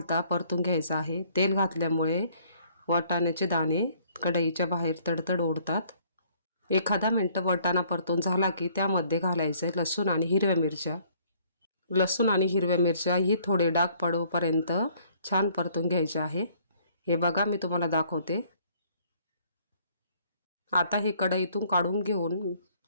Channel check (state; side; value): inverted; both; correlation -0.61